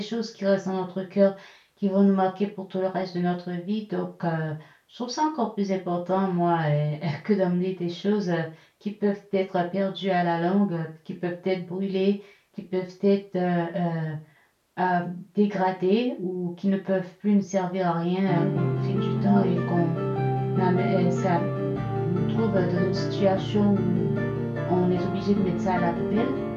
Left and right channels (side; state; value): both; identical; correlation 1.00